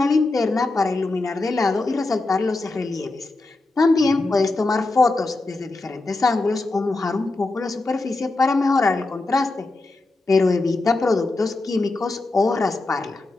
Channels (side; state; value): right; quieter; 3.2 dB